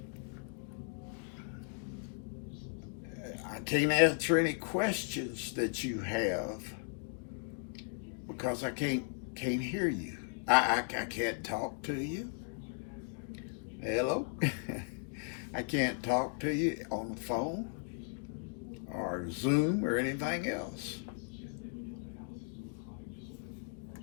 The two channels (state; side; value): silent; right; 53 dB below the other